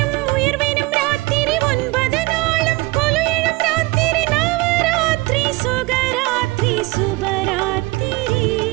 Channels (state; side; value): quieter; left; 22.8 dB